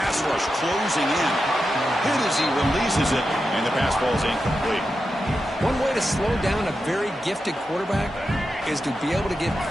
rush closing in. Hit as he releases it, and the pass ball is incomplete. One way to slow down a very gifted quarterback is to be able to get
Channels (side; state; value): both; normal; correlation 0.89